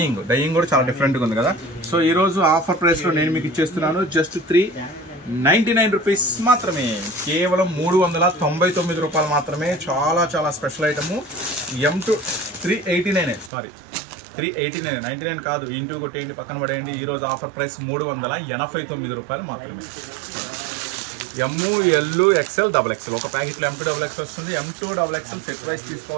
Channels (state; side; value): drops out; left; at 13.5 s